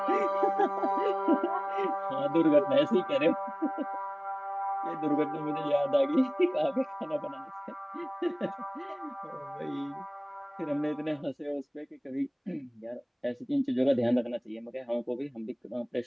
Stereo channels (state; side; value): identical; both; correlation 1.00